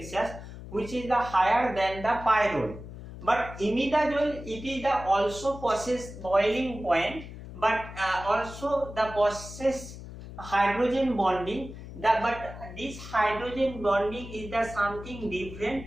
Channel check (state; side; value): noise; left; hum, 13 dB below the sound